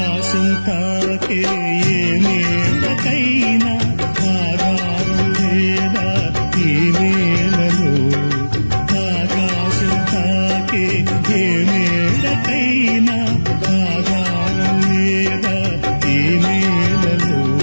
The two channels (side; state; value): both; inverted; correlation -1.00